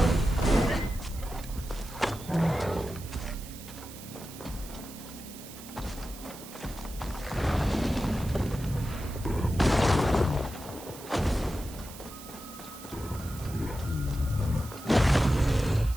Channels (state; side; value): noise; right; hiss, 15 dB below the sound